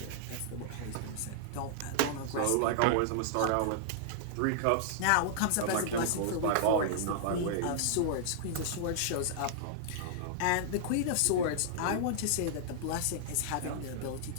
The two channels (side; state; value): both; different; correlation -0.01